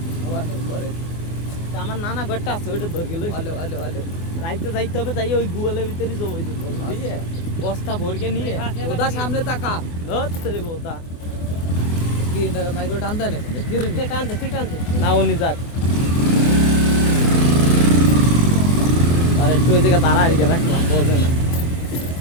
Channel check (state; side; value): late; right; 24 ms